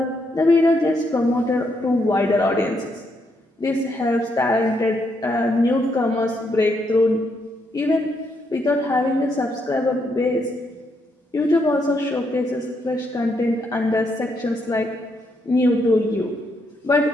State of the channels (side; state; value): both; normal; correlation 0.77